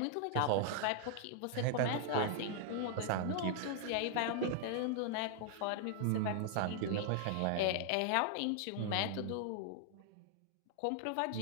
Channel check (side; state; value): both; different; correlation -0.01